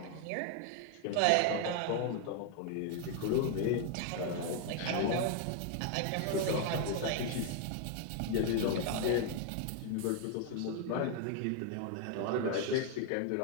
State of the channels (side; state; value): both; different; correlation 0.00